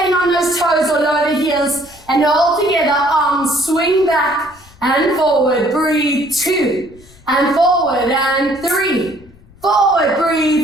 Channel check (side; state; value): left; noise; rumble, 25 dB below the sound